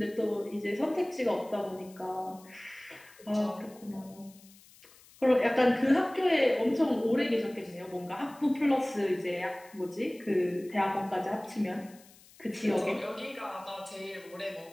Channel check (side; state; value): left; noise; hiss, 24 dB below the sound